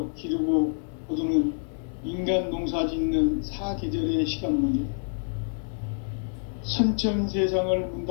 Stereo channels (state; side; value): silent; right; digital silence